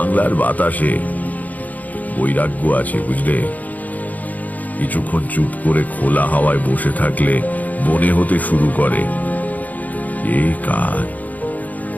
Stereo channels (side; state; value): right; late; 0.079 ms